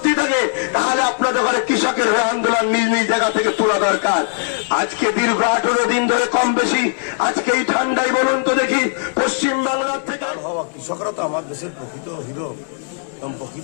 থাকে, তাহলে আপনাদের ঘরে কৃষকের আন্দোলন নিজ নিজ জায়গা থেকে তোলা দরকার। আজকে দীর্ঘ 18 দিন ধরে কম বেশি আজকে এই ঠান্ডায় বলুন তো দেখি পশ্চিম বাংলার থেকে হওয়া কৃষকরা তো আমার দেশের প্রকৃত হিরো এবং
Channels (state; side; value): silent; right; digital silence